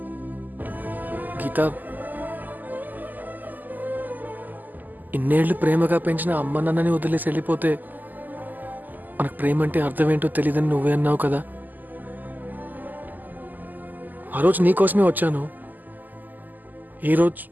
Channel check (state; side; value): late; left; 0.085 ms